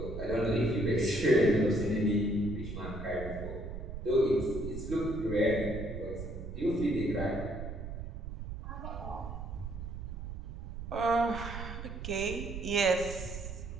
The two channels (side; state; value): right; noise; rumble, 8 dB below the sound